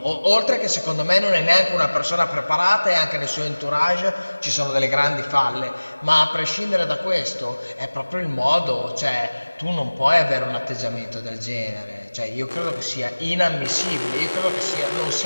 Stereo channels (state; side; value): inverted; both; correlation -1.00